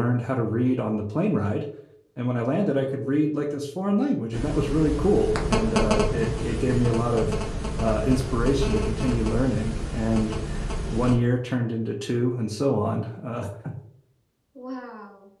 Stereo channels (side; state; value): both; identical; correlation 1.00